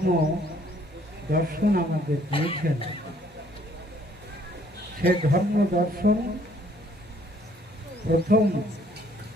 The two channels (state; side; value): noise; left; hum, 27 dB below the sound